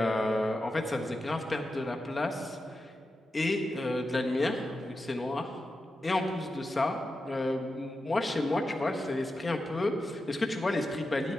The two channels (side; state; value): both; normal; correlation 0.90